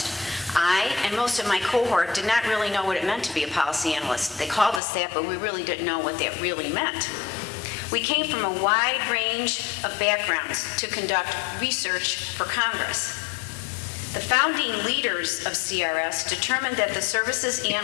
I and most of my cohort did not really know what it meant to be a policy analyst. They called us that, but we really didn't know what that really meant. We came from a wide range of backgrounds to conduct research for Congress. The founding leaders of CRS determined that the service's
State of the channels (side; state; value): right; drops out; at 4.8 s